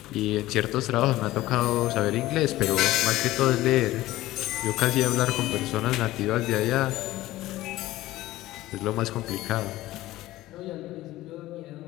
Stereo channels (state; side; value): quieter; right; 16.5 dB